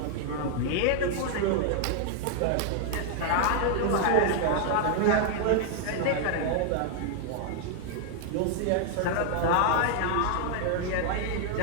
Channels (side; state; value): both; different; correlation 0.00